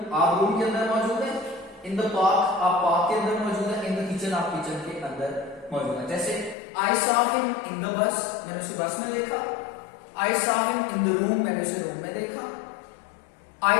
आप रूम के अंदर मौजूद है, इन द पार्क आप पार्क के अंदर मौजूद है, इन द किचन आप किचन के अंदर मौजूद है। जैसे I saw him in the bus, मैंने उसे बस में देखा। I saw him in the room, मैंने उसे रूम में देखा।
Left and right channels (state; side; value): drops out; right; at 6.6 s